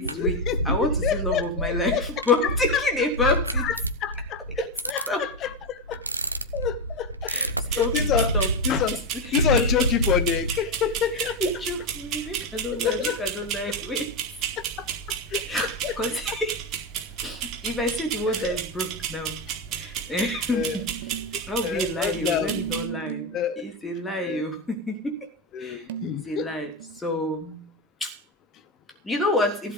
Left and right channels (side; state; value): both; normal; correlation 0.10